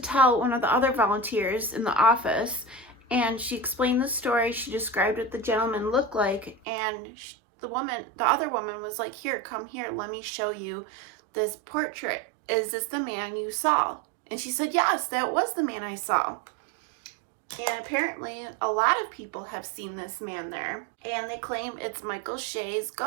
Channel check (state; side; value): drops out; left; at 6.6 s